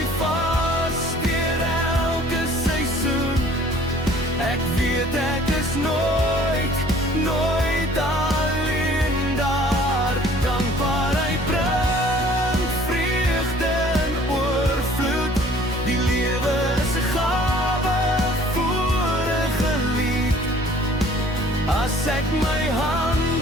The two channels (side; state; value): both; normal; correlation 0.53